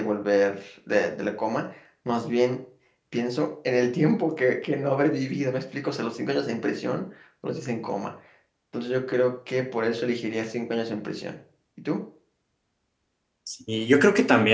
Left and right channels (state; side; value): identical; both; correlation 1.00